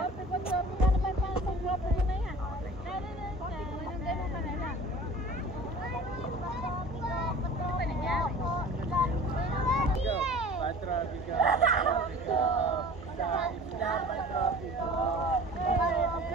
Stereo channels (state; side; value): normal; both; correlation 0.43